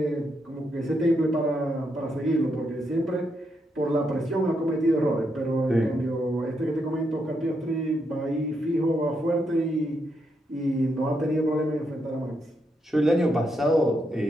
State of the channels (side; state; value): both; normal; correlation 0.80